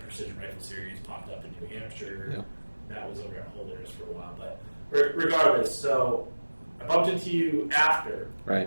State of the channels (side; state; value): both; inverted; correlation -1.00